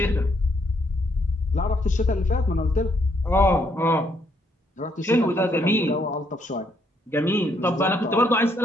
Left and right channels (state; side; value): normal; both; correlation 0.72